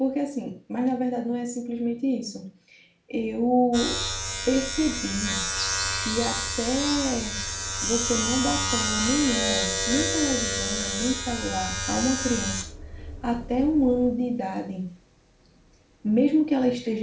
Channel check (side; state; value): both; identical; correlation 1.00